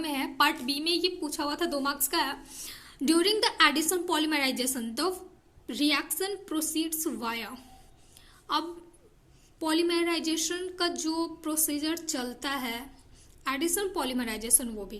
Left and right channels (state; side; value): identical; both; correlation 1.00